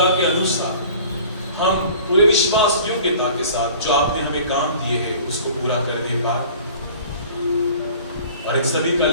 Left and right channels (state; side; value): inverted; both; correlation -0.46